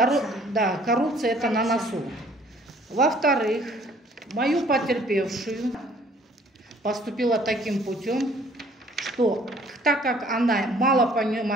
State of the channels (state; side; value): normal; both; correlation 0.57